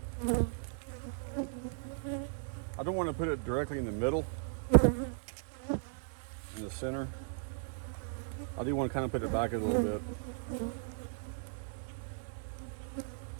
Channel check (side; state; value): left; silent; 53 dB below the other